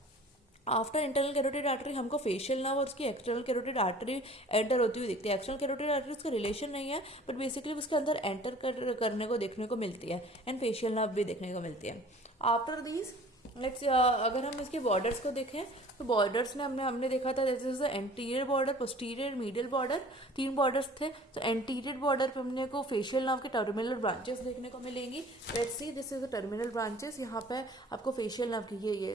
आफ्टर इंटरनल कैरोटिड आर्टरी हमको फेशियल नर्व और उसकी एक्सटर्नल कैरोटिड आर्टरी एंटर होती हुई दिखती है। एक्सटर्नल कैरोटिड आर्टरी उसका रिलेशन नहीं है, बट बेसिकली उसके अंदर एंटर करने को देखने को मिलती है, एंड फेशियल नर्व भी देखने को मिलती है। आफ्टर दीज लेट्स अगर हम इसके बॉर्डर्स को देखें, तो बॉर्डर्स में हमने देखा था this is the anterior border, posterior, medial border, 3 borders थे। तो एंटीरियर बॉर्डर पे हमने को फेशियल नर्व के टर्मिनल ब्रांचेस देखने को मिलेंगी। Let's see this is the terminal branches, यहाँ पे आपको फेशियल नर्व की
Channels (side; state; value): both; normal; correlation 0.48